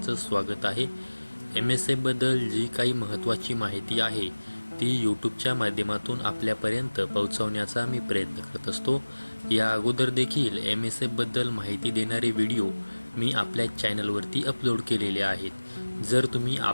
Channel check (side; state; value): both; inverted; correlation -1.00